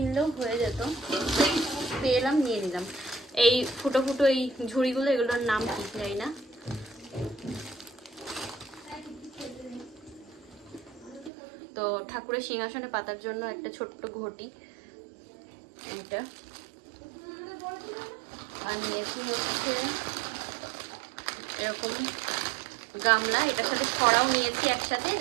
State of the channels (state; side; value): drops out; left; at 11.3 s